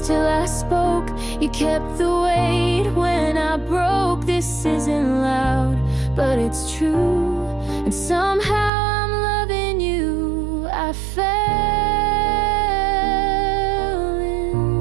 till I spoke, you kept the weight when I broke. This isn't loud, but it's true, and somehow I'm loving you. I fell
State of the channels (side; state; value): left; drops out; at 8.7 s